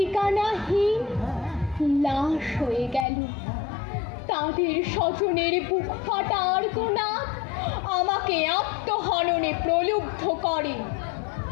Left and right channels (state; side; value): drops out; right; at 3.1 s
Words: লাশ হয়ে গেল, তাদের স্বজনের বুক ফাটা আর্তনাদ আমাকে আত্মহননে প্রলুব্ধ করে।